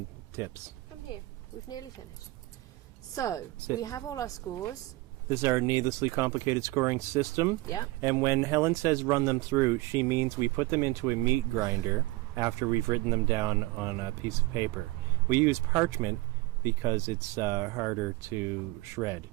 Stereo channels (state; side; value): quieter; left; 20.9 dB